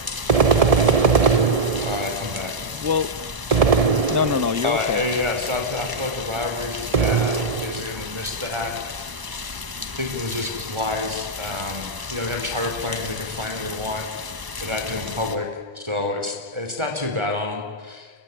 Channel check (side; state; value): left; late; 1.0 ms